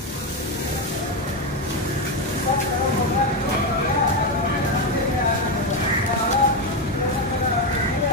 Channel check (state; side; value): normal; both; correlation 0.10